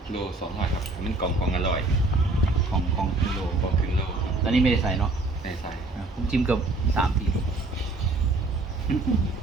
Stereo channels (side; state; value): left; quieter; 3.1 dB